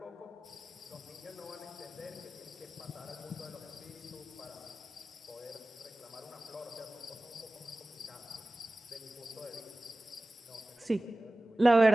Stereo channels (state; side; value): normal; both; correlation 0.97